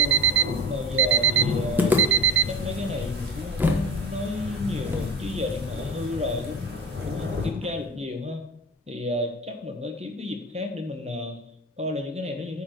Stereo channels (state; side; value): normal; both; correlation 0.25